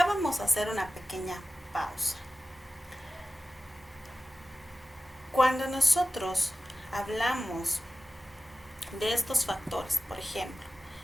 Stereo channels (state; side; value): normal; both; correlation 0.95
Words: vamos a hacer una pequeña pausa. Cuando nosotros hablamos de estos factores, por ejemplo,